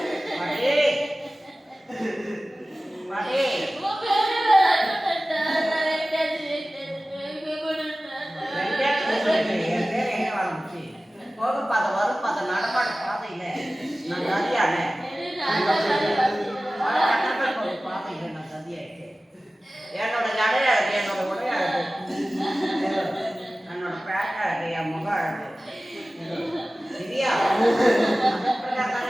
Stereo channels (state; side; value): normal; both; correlation 0.97